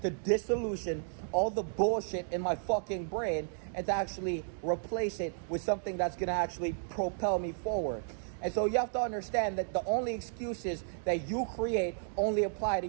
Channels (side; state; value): left; silent; digital silence